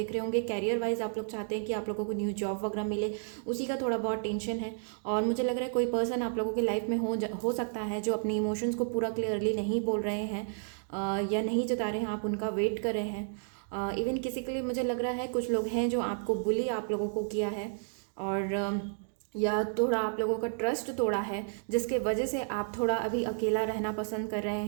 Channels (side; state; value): left; silent; digital silence